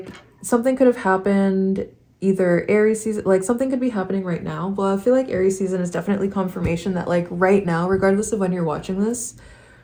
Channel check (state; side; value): identical; both; correlation 1.00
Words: something could have happened either Aries season, like something could be happening right now. Well, I feel like Aries season is definitely confirmation that like right now, regardless of when you're watching this,